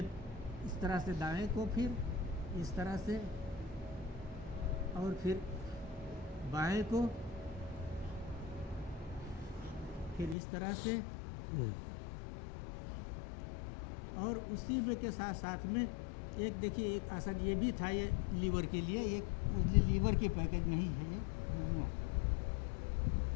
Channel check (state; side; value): drops out; right; at 10.4 s